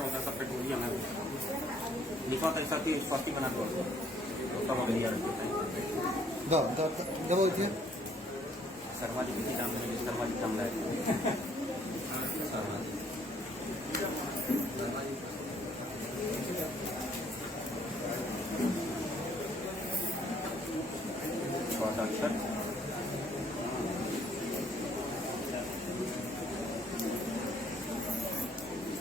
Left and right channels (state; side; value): normal; both; correlation 0.65